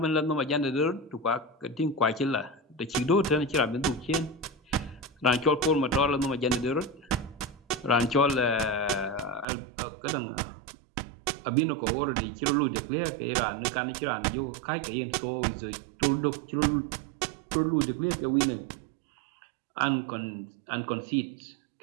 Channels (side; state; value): left; drops out; at 9.5 s